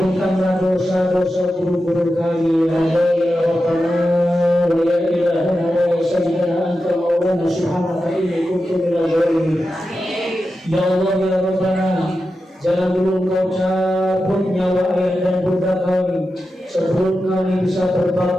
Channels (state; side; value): normal; both; correlation 0.91